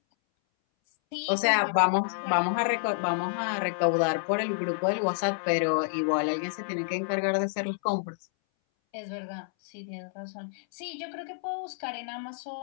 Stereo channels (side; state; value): right; silent; 59 dB below the other